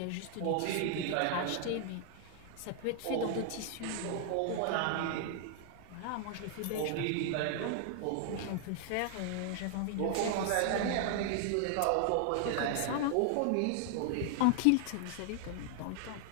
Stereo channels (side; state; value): both; different; correlation 0.00